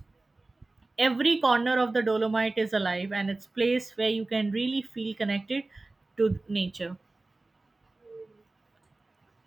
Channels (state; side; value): quieter; left; 3.1 dB